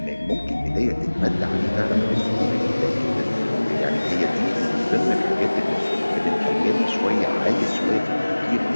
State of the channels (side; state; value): both; inverted; correlation -1.00